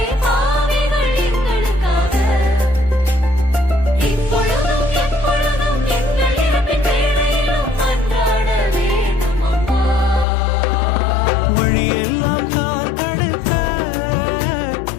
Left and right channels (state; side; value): drops out; right; at 10.2 s